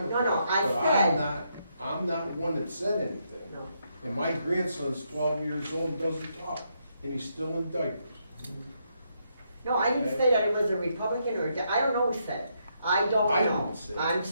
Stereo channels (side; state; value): both; inverted; correlation -0.78